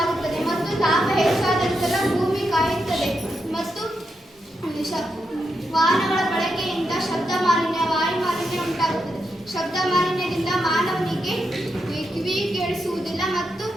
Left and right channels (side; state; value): both; normal; correlation 0.84